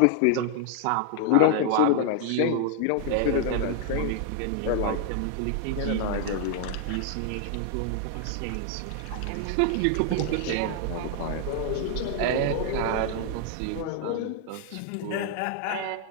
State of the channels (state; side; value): different; both; correlation 0.00